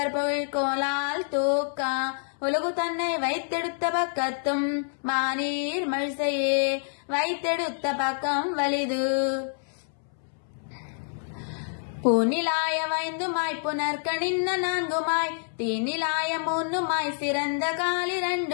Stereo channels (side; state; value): right; silent; 60 dB below the other